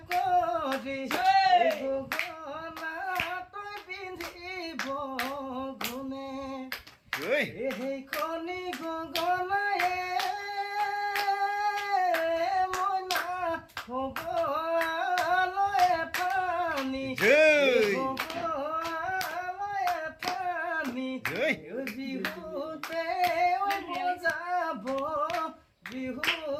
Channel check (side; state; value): both; identical; correlation 1.00